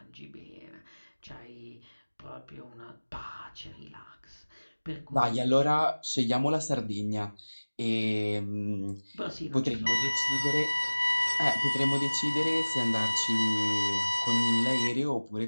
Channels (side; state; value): both; inverted; correlation -1.00